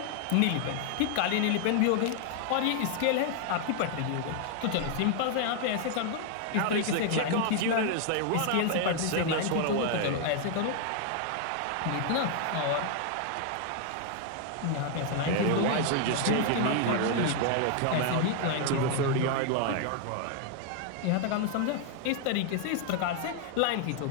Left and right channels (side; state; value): both; different; correlation 0.00